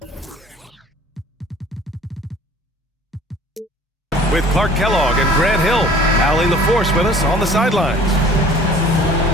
With Clark Kellogg and Grant Hill, Allie LaForce with us on the sidelines.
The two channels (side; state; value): both; normal; correlation 0.49